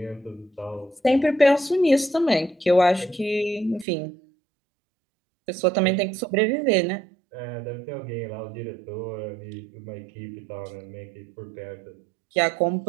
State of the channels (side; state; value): left; drops out; at 3.9 s